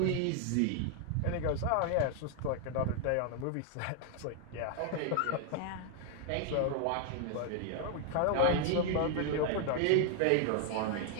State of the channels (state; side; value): different; both; correlation 0.00